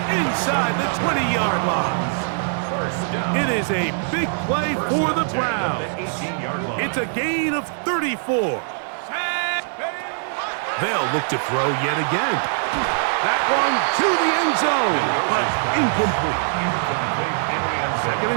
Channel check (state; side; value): silent; left; 64 dB below the other